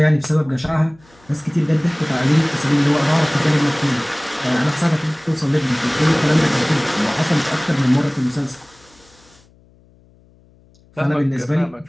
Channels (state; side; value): noise; left; hum, 30 dB below the sound